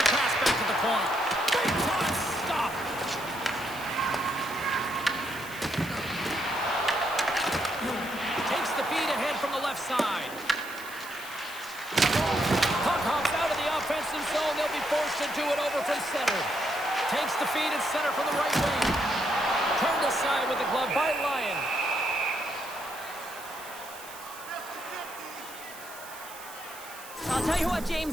pass back to the point. Big time stop. Takes the feed ahead from the left side. Puck hops out of the offensive zone. They'll be forced to do it over from center. Takes the feed at center from the right wing. Turned aside with the glove by Lyon. I'll tell you what,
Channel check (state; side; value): noise; right; hiss, 15 dB below the sound